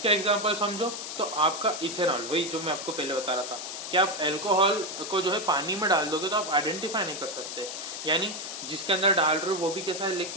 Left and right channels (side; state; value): left; noise; hiss, 7 dB below the sound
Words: एग्जांपल समझो तो आपका इथेनॉल, वही जो मैं आपको पहले बता रहा था कि आप अल्कोहल को जो है पानी में डाल दोगे तो आप आइडेंटिफाई नहीं कर सकते, यानी जिसके अंदर डाल रहे हो वो भी कैसा है,